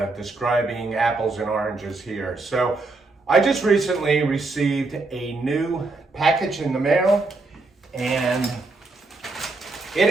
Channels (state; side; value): quieter; left; 3.4 dB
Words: describing apples and oranges here. So I just recently received a new package in the mail, and it